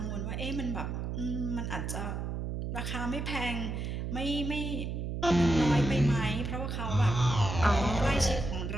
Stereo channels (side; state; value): right; noise; hum, 3 dB below the sound